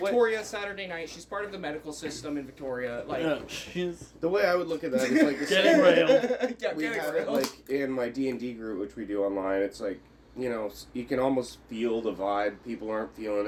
Saturday night. She's part of the medical system in Victoria. Like, Yeah, she's The way I would look at that is like the getting same- railed. yeah, We getting have it railed. like in my D&D group, which we do online. It's like, you know, you can almost feel the vibe. People aren't feeling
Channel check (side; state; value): both; identical; correlation 1.00